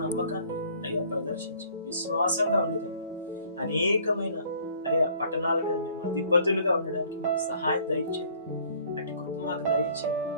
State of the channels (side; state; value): both; inverted; correlation -0.56